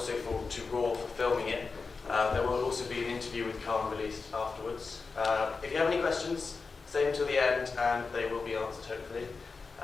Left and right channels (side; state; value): right; quieter; 4.5 dB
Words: to Raw for filming it. There will also be an interview with Carne released afterwards. If you have any questions, stay until the end and they will be answered hopefully.